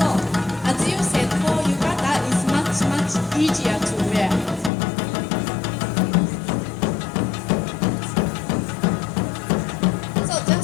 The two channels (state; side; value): drops out; right; at 4.7 s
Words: as you said, for yukata is much easier to wear. So